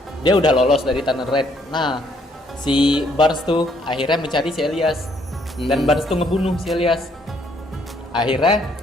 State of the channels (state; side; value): normal; both; correlation 0.68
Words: dia udah lolos dari Tunnel Red. Nah, si Barnes tuh akhirnya mencari si Elias. Dan Barnes tuh ngebunuh si Elias. Akhirnya